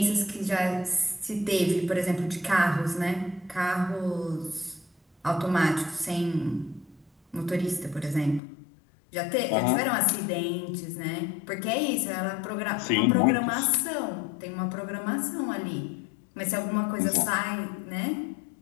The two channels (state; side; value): drops out; right; at 8.4 s